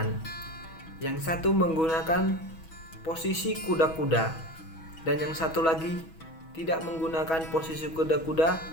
yang satu menggunakan posisi kuda-kuda dan yang satu lagi tidak menggunakan posisi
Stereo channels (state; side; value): late; right; 6.2 ms